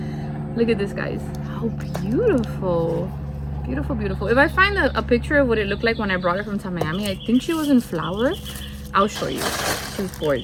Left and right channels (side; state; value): both; identical; correlation 1.00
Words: Look at this, guys. How beautiful. Beautiful, beautiful. If I find a picture of what it looked like when I brought her from Miami, I think she was in flower. I'll show you. She's